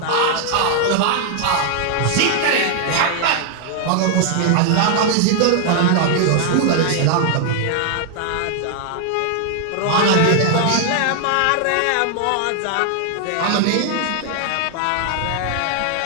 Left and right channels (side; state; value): both; different; correlation 0.00